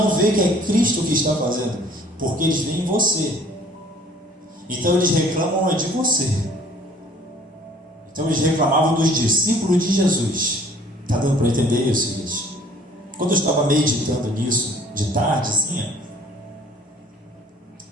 vê que é Cristo que está fazendo, porque eles veem você. Então eles reclamam de você. Então eles reclamavam dos discípulos de Jesus. Está dando para entender isso, gente? Quando eu estava meditando nisso de tarde, assim,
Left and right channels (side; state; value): both; normal; correlation 0.55